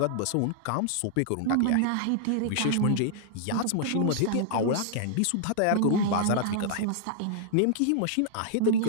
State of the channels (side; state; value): both; different; correlation -0.01